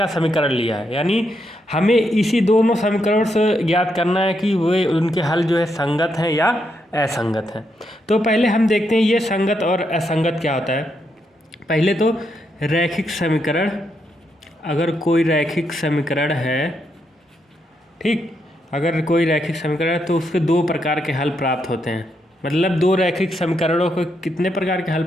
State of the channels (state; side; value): normal; both; correlation 0.80